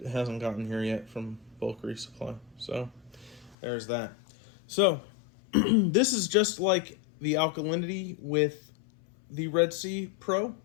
hasn't gotten here yet from bulk resupply. So there's that. So this is just like the alkalinity with the Red Sea Pro,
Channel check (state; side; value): drops out; right; at 3.6 s